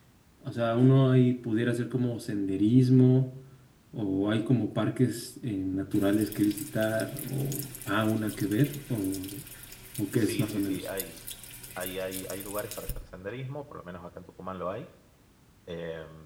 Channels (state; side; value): identical; both; correlation 1.00